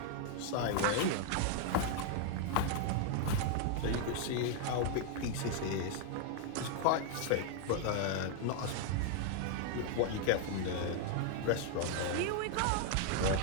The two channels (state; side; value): different; both; correlation 0.00